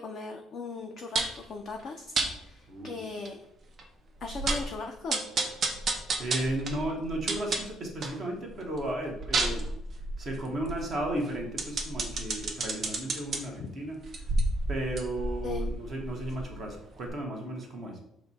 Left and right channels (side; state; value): both; normal; correlation 0.73